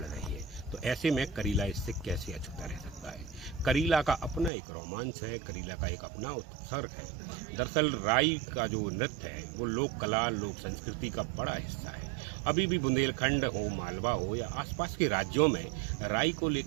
रही है। तो ऐसे में करीला इससे कैसे अछूता रह सकता है? करीला का अपना एक रोमांच है, करीला का एक अपना उत्सर्ग है। दरअसल राई का जो नृत्य है वो लोक कला, लोक संस्कृति का बड़ा हिस्सा है। अभी भी बुंदेलखंड हो, मालवा हो या आसपास के राज्यों में राई को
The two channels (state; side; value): drops out; left; at 4.5 s